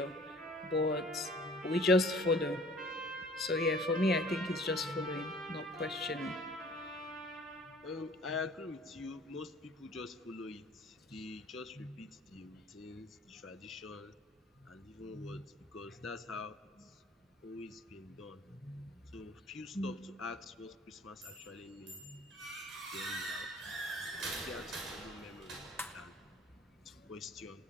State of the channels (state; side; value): normal; both; correlation 0.51